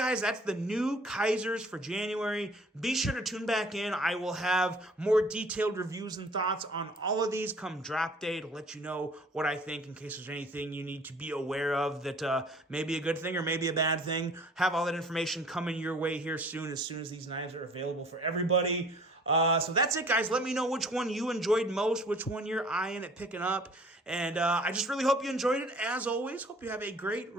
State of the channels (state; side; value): normal; both; correlation 0.52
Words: That's the new Kaizers for January. Be sure to tune back in. I will have more detailed reviews and thoughts on all of these come drop day to let you know what I think in case there's anything you need to be aware of that may be a good thing or maybe a bad thing. Have all that information coming your way here soon as these knives are available for everybody. So that's it, guys. Let me know which one you enjoyed most, which one you're eyeing at picking up. And I just really hope you enjoyed it. As always, hope you have a great